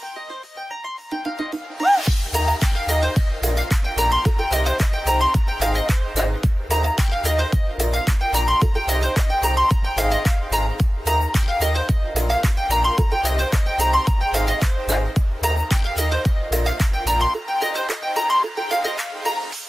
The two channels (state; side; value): normal; both; correlation 0.96